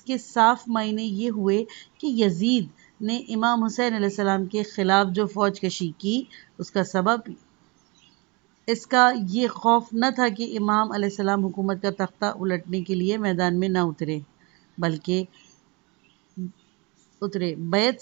کے صاف معنی یہ ہوئے کہ یزید نے امام حسین علیہ السلام کے خلاف جو فوج کشی کی اس کا سبب اس کا یہ خوف نہ تھا کہ امام علیہ السلام حکومت کا تختہ الٹنے کے لیے میدان میں نہ اترے، بلکہ بیعت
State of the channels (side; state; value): left; quieter; 28.3 dB